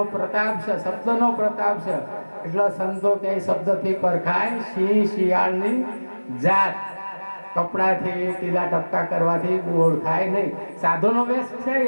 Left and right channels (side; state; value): both; inverted; correlation -1.00